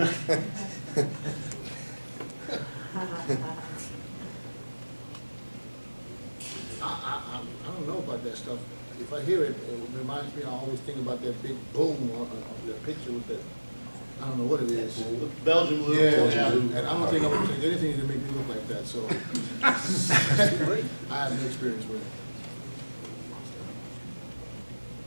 I don't know about that stuff. If I hear it, it reminds me, I always think about that big boom on that picture with that, I don't know what it is. Belgian blue. Yeah, and I don't think I'm going to take anything to make me look like that, so. I have no experience with it.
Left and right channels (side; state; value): both; inverted; correlation -1.00